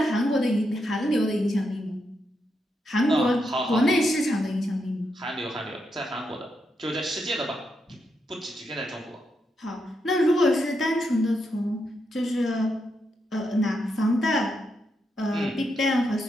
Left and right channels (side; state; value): both; normal; correlation 0.82